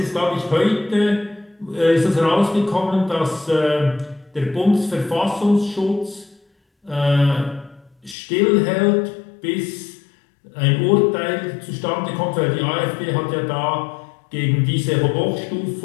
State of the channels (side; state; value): right; drops out; at 8.2 s